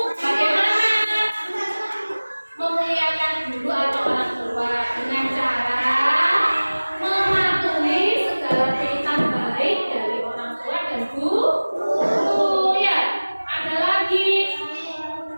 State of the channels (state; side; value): inverted; both; correlation -1.00